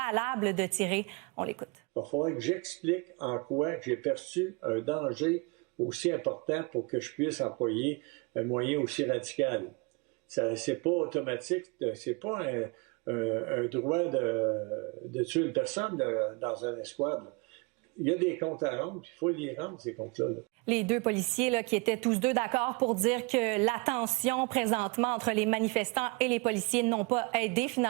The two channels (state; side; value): quieter; left; 29.6 dB